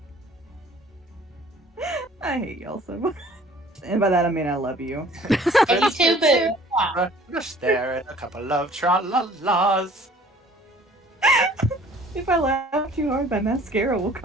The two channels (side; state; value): both; normal; correlation 0.52